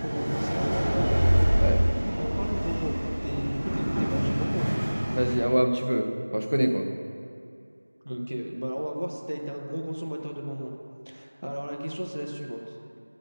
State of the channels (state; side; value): inverted; both; correlation -1.00